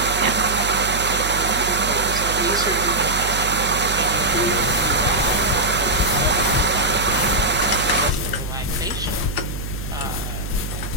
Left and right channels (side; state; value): right; noise; hum, 7 dB below the sound